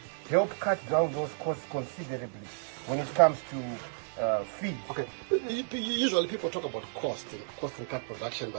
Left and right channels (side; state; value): left; silent; digital silence